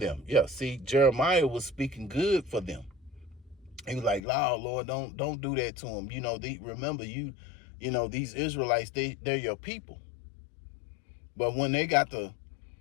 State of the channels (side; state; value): right; drops out; at 4.2 s